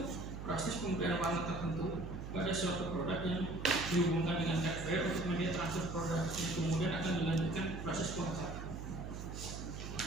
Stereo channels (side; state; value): right; noise; hum, 7 dB below the sound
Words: proses pemberian warna tertentu pada suatu produk yang dihubungkan dengan hardware untuk media transfer produk yang kemudian akan dilanjutkan proses pengecatan.